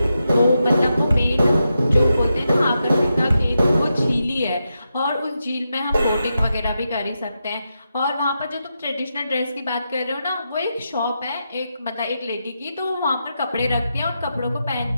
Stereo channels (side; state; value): both; inverted; correlation -0.87